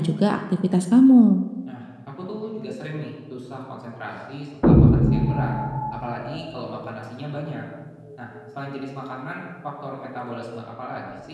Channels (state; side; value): identical; both; correlation 1.00